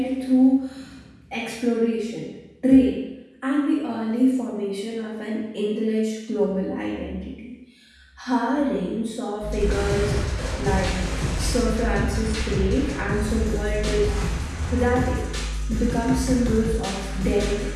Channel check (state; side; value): identical; both; correlation 1.00